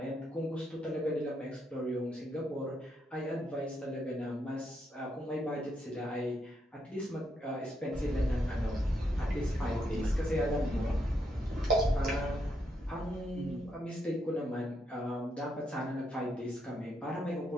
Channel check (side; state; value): both; normal; correlation 0.78